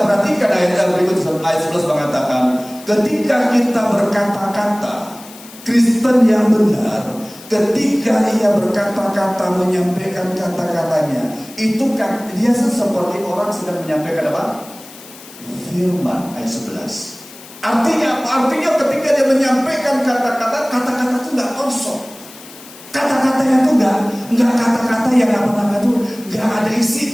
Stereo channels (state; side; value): noise; left; hiss, 19 dB below the sound